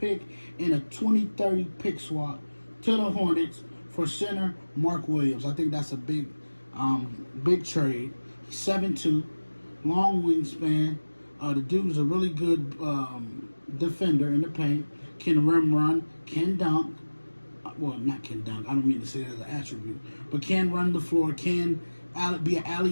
and a 2030 pick swap to the Hornets for center Mark Williams. I think that's a big trade. 7'2", long wingspan. The dude's a really good defender in the paint. Can rim run, can dunk. Well, not can dunk. I don't mean to say that as an attribute, but can run the floor. Can be an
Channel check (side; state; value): both; inverted; correlation -1.00